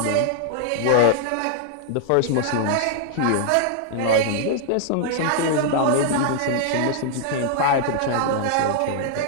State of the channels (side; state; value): both; different; correlation 0.00